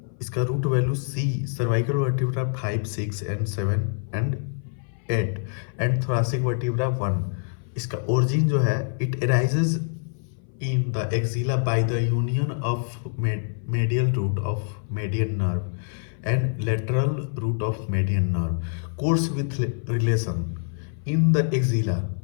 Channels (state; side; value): silent; right; 58 dB below the other